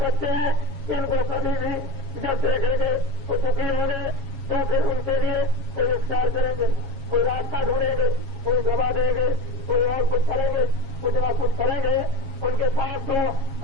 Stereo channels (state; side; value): late; left; 7.3 ms